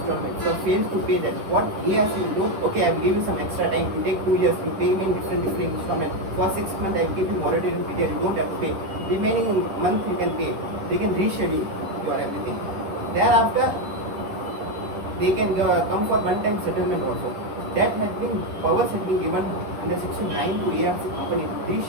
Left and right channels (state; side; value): late; left; 10 ms